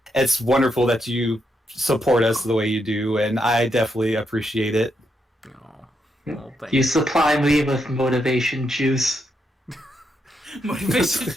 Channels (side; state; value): both; normal; correlation 0.80